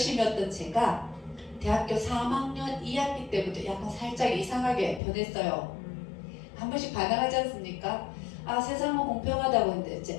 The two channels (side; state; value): right; drops out; at 5.0 s